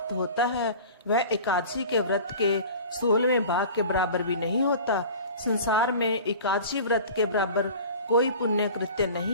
होता है वह एकादशी के व्रत के 16वें भाग के बराबर भी नहीं होता। संसार में एकादशी व्रत के बराबर कोई पुण्य कृत्य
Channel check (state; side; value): inverted; both; correlation -0.40